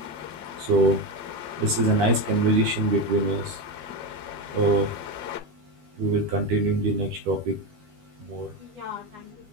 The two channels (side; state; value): left; late; 13 ms